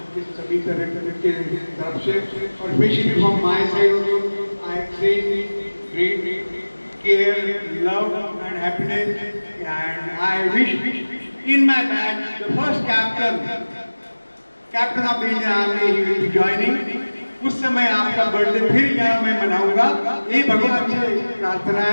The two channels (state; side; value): inverted; both; correlation -1.00